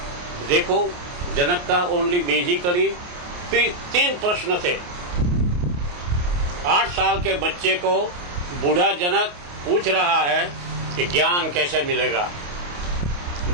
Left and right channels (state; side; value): late; left; 28 ms